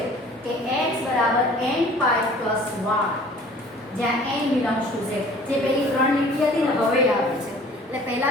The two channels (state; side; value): normal; both; correlation 0.50